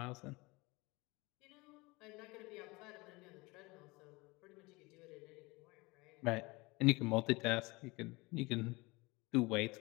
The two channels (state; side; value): quieter; right; 24.1 dB